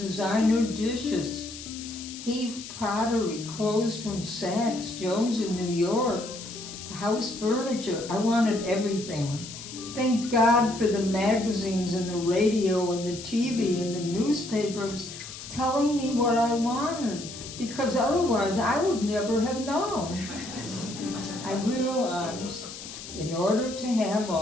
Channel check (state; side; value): noise; left; hiss, 12 dB below the sound